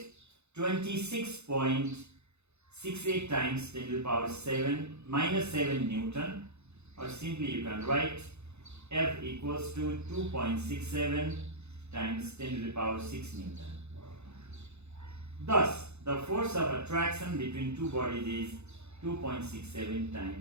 26.68 times 10 to the power 7 minus 7 Newton, or simply you can write F equals to 2.67 times 10 to the power 6 Newton. Thus, the force of attraction between two bodies is 2.67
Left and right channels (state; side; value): late; left; 0.81 ms